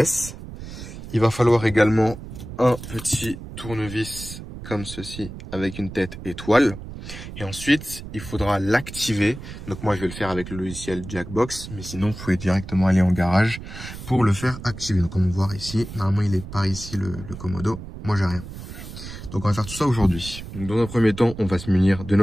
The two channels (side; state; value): right; noise; rumble, 12 dB below the sound